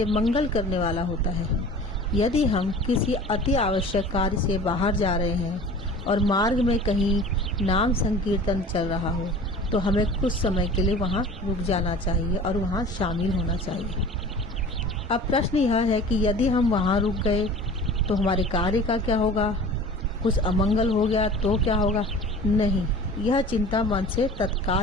मंगल करने वाला होता है। यदि हम किसी अति आवश्यक कार्य से बाहर जा रहे हैं और मार्ग में कहीं नाम संकीर्तन चल रहा हो तो हमें कुछ समय के लिए वहाँ रुक जाना चाहिए और वहाँ शामिल होना चाहिए। अब प्रश्न यह है कि यदि हम वहाँ रुक गए तो हमारे कार्य का क्या होगा? कुछ अमंगल हो गया तो क्या होगा? नहीं, यह चिंता मन से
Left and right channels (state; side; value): normal; both; correlation 0.42